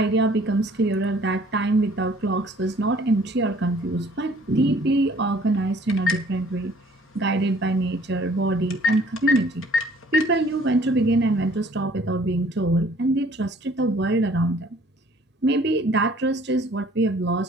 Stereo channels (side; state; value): both; normal; correlation 0.56